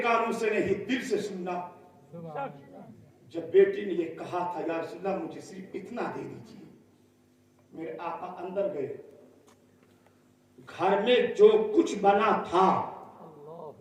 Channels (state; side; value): identical; both; correlation 1.00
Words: कानों से नहीं, दिल से सुनना। जब बेटी ने ये कहा था, या रसूलल्लाह मुझे सिर्फ इतना दे दीजिए, मेरे आका अंदर गए। घर में जो कुछ बना था,